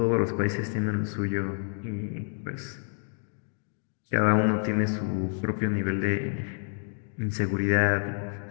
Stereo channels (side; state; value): right; silent; 59 dB below the other